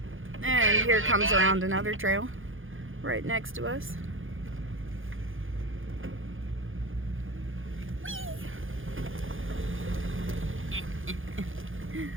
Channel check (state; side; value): late; left; 0.58 ms